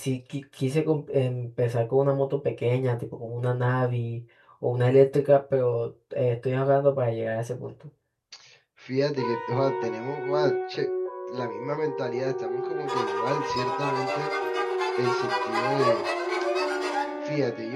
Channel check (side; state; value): both; identical; correlation 1.00